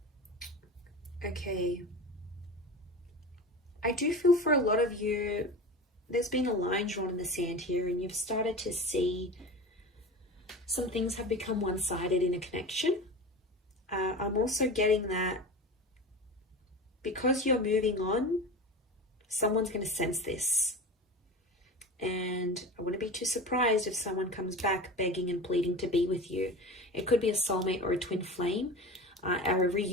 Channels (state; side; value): normal; both; correlation 0.31